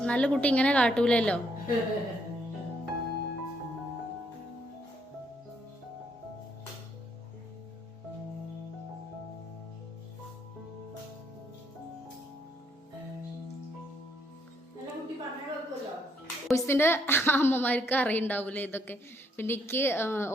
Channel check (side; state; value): both; normal; correlation 0.72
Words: നല്ല കുട്ടി ഇങ്ങനെ കാട്ടൂലല്ലോ. ബോയ്സിൻ്റെ അമ്മമാർക്ക് അറിയുണ്ടാവില്ലേ ഇതൊക്കെ. പിന്നെ എനിക്ക്